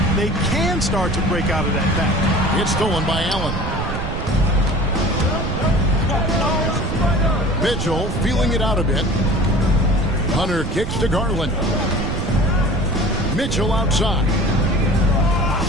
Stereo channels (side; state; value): right; noise; rumble, 5 dB below the sound